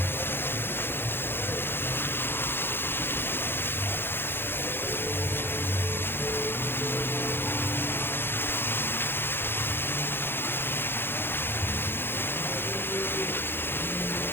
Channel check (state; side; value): late; right; 0.10 ms